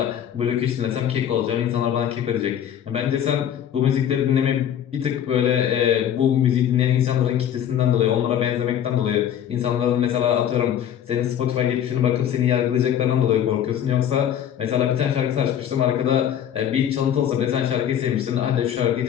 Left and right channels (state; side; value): quieter; right; 9.8 dB